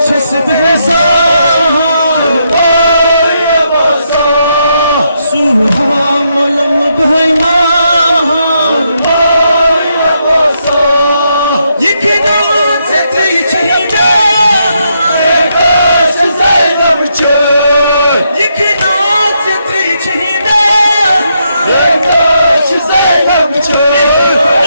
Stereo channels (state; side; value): inverted; both; correlation -0.79